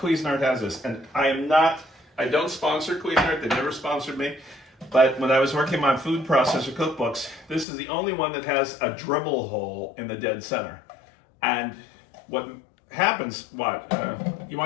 has this. And I don't sponsor Cuisinart, they never sponsored me. But when I was working on food processor cookbooks, this is the only one that has a dribble hole in the dead center. And what happens, you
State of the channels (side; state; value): right; drops out; at 7.7 s